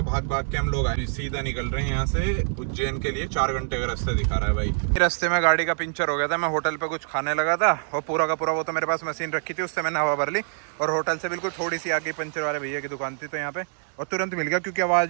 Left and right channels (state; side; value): silent; left; digital silence